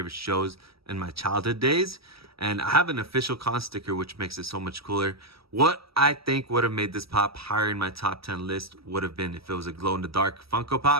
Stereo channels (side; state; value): left; late; 0.76 ms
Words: shows in my childhood days. And I have an official con sticker, which makes it so much cooler. What I think would have made this pop higher in my top 10 list would have been if it was a glow-in-the-dark Funko